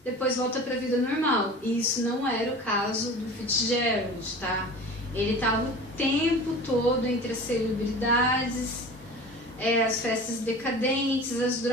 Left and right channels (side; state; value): both; normal; correlation 0.37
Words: depois volta para a vida normal. E isso não era o caso do Fitzgerald, tá? Ele estava o tempo todo entre as celebridades, as festas decadentes, as